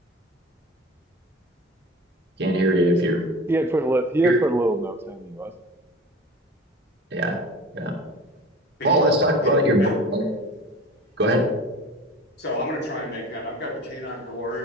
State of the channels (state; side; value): normal; both; correlation 0.38